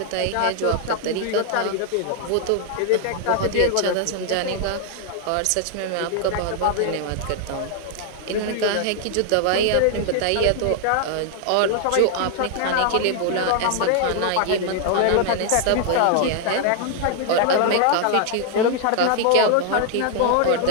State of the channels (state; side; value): different; both; correlation 0.00